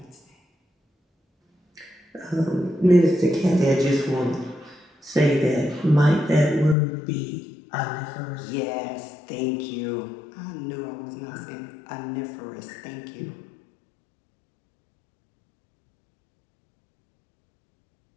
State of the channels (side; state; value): right; drops out; at 6.8 s